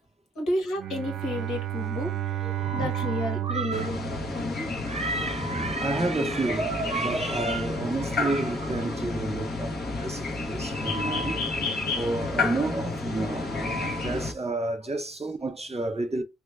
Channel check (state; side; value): normal; both; correlation 0.63